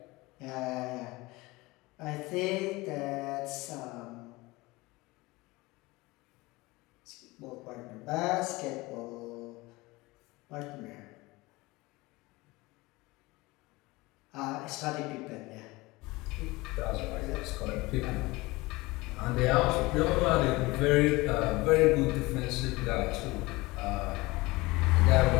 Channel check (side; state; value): right; quieter; 21.9 dB